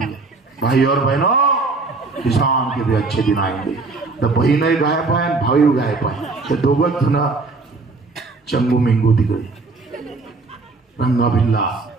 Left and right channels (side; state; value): left; quieter; 3.8 dB